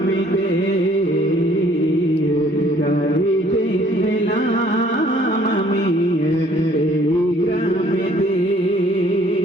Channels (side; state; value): both; normal; correlation 0.59